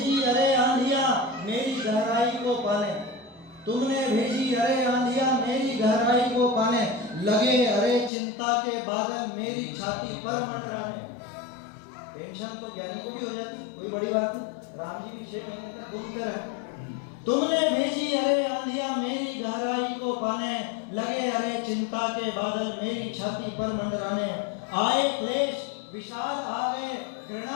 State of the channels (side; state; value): right; drops out; at 8.1 s